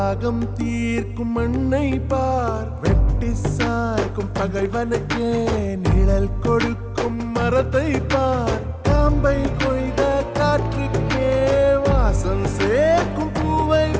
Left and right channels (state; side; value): identical; both; correlation 1.00